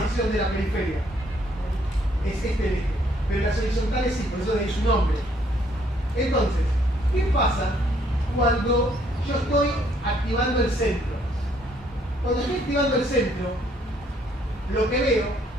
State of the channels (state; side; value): normal; both; correlation 0.66